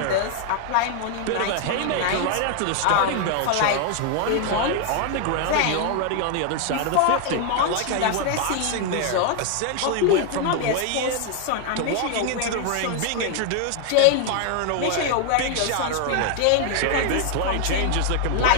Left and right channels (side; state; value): both; different; correlation 0.00